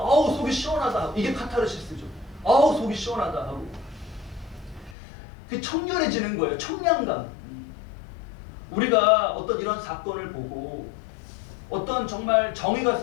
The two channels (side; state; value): right; drops out; at 5.0 s